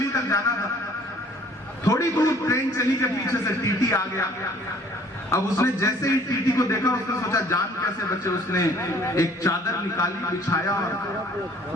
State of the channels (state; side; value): normal; both; correlation 0.55